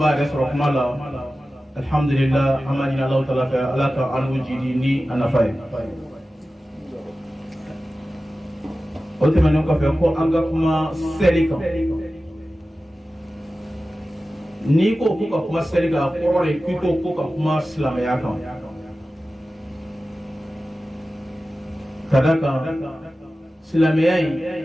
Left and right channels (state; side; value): normal; both; correlation 0.95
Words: yɛrɛ sɔrɔ kuma la alhamdulillah an b'a ɲini Alahu Taala fɛ Ala ka an n'u jidi ni a nafa ye o tɛmɛnen kɔfɛ ko an ka kuma seli kan n'i ko ko ka kuma seli kan a kɔrɔ de k'i ko ka kuma silamɛya kan ka da kan silamɛya in